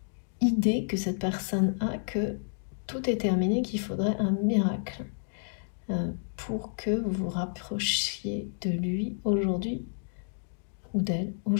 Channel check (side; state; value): right; silent; digital silence